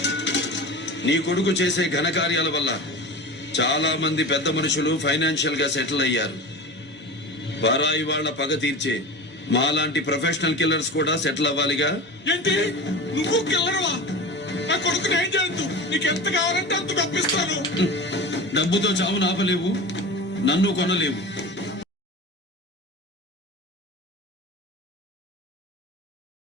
నీ కొడుకు చేసే ఘనకార్యాల వల్ల చాలా మంది పెద్ద మనుషులు ఫైనాన్షియల్ గా సెటిల్ అయ్యారు. పరాయి వాళ్ళ పగ తీర్చే మాలాంటి ప్రొఫెషనల్ కిల్లర్స్ కూడా సెటిల్ అవ్వాలిగా. ఏంటి నువ్వు కిల్లర్వా? నా కొడుకుని ఏం చేయొద్దు, నీకు ఎంత కావాలంటే అంత తప్పిస్తాను. డబ్బుతో చావును ఆపలేవు, నన్ను కొనలేవు.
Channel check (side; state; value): both; normal; correlation 0.31